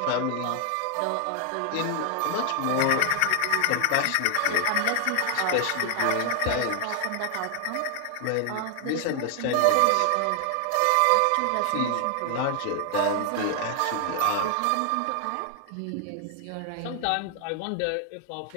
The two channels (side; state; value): both; different; correlation 0.00